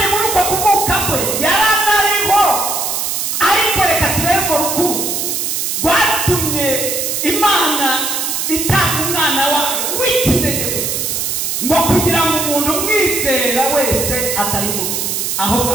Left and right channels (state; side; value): noise; right; hiss, 1 dB below the sound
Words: muri uko kuvuka kwe yaranariho. Ariko reka turebe ngo rukundo rwatumye Imana itanga umwana wayo w'ikinege gusa, ngo kugira ngo umuntu umwizera wese atarimuka ahubwo